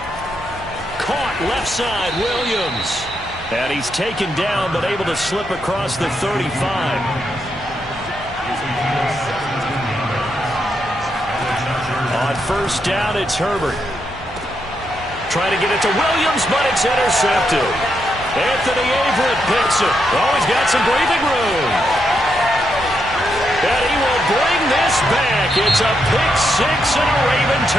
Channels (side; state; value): both; normal; correlation 0.81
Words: Caught left side, Williams. And he's taken down but able to slip across the 35. On 1st down, it's Herbert. Trying to get it to Williams, but it's intercepted. Anthony Averett picks it. Oh, he's got some breathing room. And he will bring this back. It's a pick-6 and a Raven